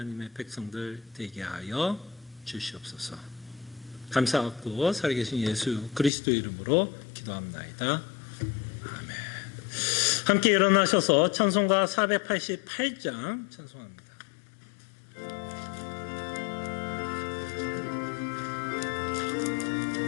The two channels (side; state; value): right; drops out; at 6.1 s